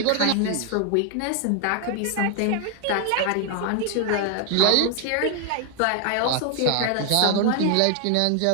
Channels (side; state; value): both; different; correlation 0.00